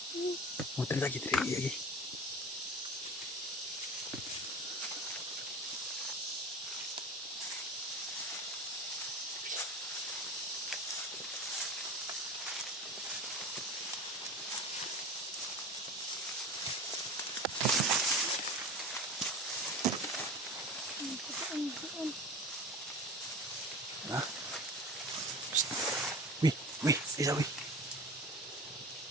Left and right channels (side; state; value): both; normal; correlation 0.33